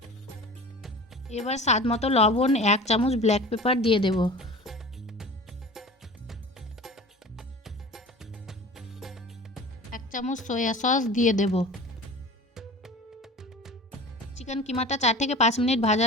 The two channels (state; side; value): normal; both; correlation 0.38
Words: এবার স্বাদ মতো লবণ, 1 চামচ ব্ল্যাক পেপার দিয়ে দেব। 1 চামচ সয়া সস দিয়ে দেব। চিকেন কিমাটা 4 থেকে 5 মিনিট